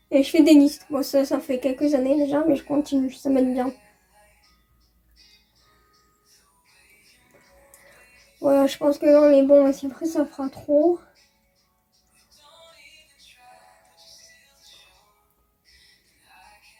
et je fais des listes. Bon, ça fait quelques années déjà, mais je continue, ça m'aide bien. Voilà, je pense que là, on est bon, mais si après ça fera trop.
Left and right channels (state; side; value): identical; both; correlation 1.00